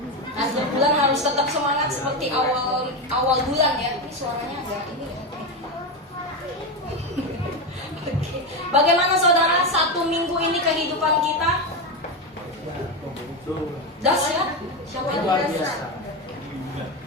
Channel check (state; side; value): normal; both; correlation 0.14